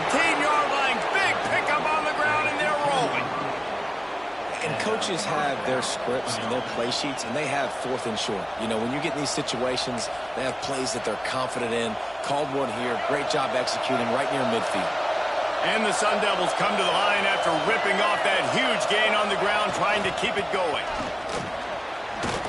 line. Big pickup on the ground, and they're rolling. And coaches have their scripts and their play sheets, and they have 4th and short. You know, when you get in these situations, they have plays that they're confident in. Called one here. Great job executing right near midfield. And the Sun Devils come to the line after ripping off that huge gain on the ground, trying to keep it going.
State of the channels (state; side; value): identical; both; correlation 1.00